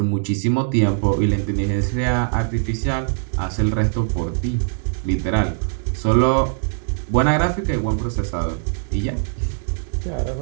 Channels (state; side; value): silent; left; digital silence